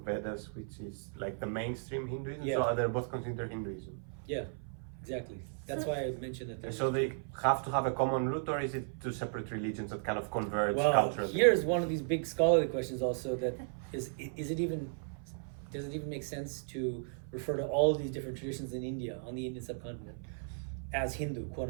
which is like the mainstream Hinduism. Yeah. So they're both considered Hinduism. Yeah, exactly. That's why I mentioned that there's. So they have to have a common root, or is it two separate religions that kind of converge Well, culturally? here's one of these big scholarly questions also that does it even make sense to refer to all of these different traditions in India, on the Indian subcontinent, as Hindu, quote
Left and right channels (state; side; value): silent; left; 54 dB below the other